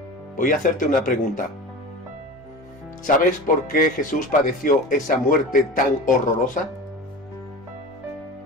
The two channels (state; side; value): normal; both; correlation 0.32